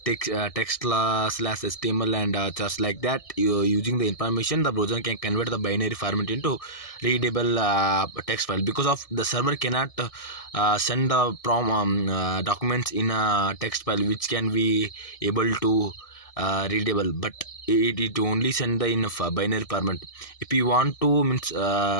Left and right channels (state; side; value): late; right; 1.6 ms